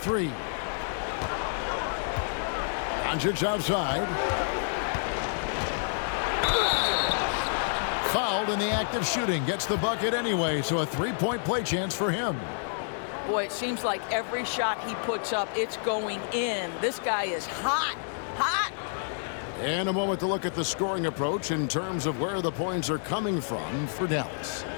Doncic outside. Fouled in the act of shooting. Gets the bucket anyway, so a 3-point play chance for him. Boy, it seems like every shot he puts up, it's going in. This guy is hot, hot. And a moment to look at the scoring approach in terms of where the points are coming from for Dallas.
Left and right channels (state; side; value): silent; right; 59 dB below the other